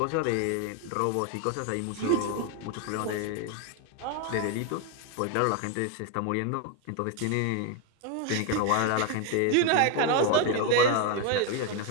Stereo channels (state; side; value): different; both; correlation 0.01